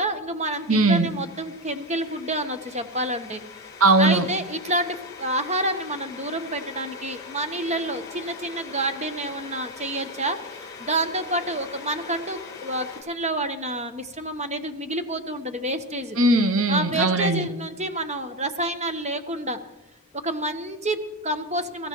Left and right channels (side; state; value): both; normal; correlation 0.12